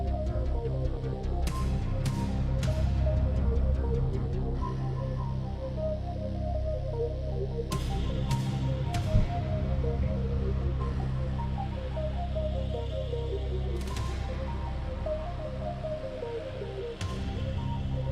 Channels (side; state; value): both; identical; correlation 1.00